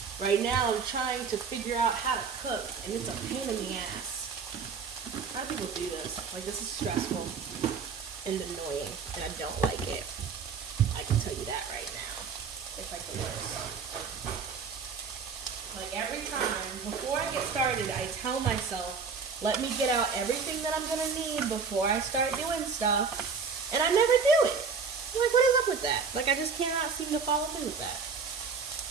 Right now, I'm trying to figure out how to cook, and it's a pain in the ass. How do people do this? Like, this is stressful and annoying, and I don't like it. I can tell you that right now. It's like the worst. Like, every time, before I get started, I tell myself, let me get out everything that I'm going to need before I start doing stuff, and I never do it. I'm like, what is up with that? Like, I just cannot seem to follow through with that.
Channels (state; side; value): quieter; left; 5.5 dB